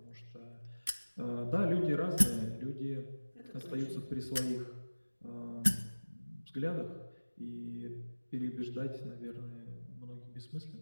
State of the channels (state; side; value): inverted; both; correlation -1.00